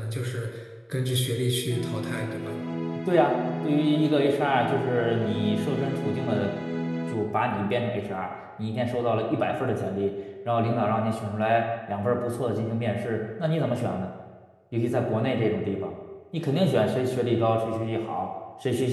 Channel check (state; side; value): identical; both; correlation 1.00